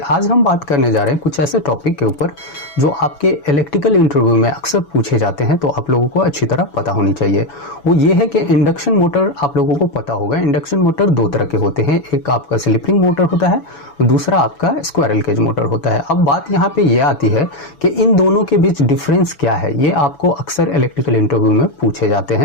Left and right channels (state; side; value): late; right; 6.1 ms